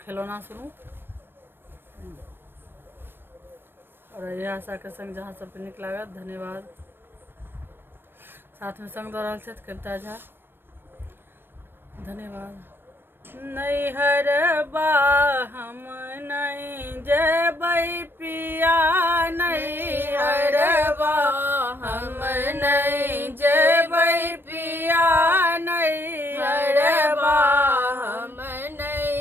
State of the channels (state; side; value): late; left; 0.10 ms